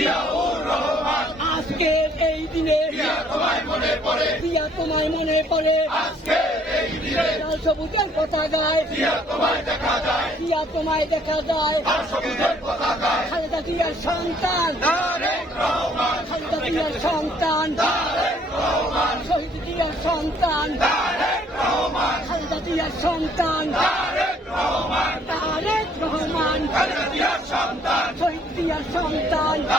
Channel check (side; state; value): both; normal; correlation 0.62